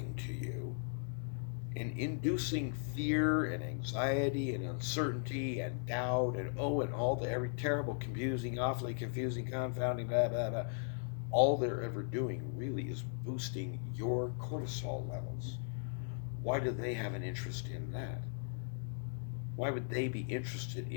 to you and inducing fear and anxiety and uncertainty and doubt and and all the every terrible, confusing, awfully confusing, confounding, blah, blah, blah, all they're ever doing really is boosting your cortisol levels. Why do they have an interest in that? Why would they be interested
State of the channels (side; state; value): right; silent; 53 dB below the other